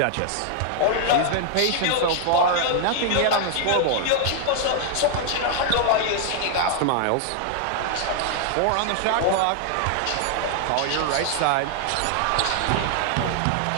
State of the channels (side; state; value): both; different; correlation 0.00